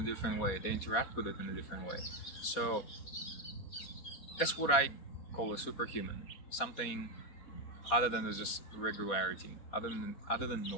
different way. They interact with it in a different way. So that's what I call a superhuman. Something other than just regularity, other than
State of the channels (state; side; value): late; right; 4.3 ms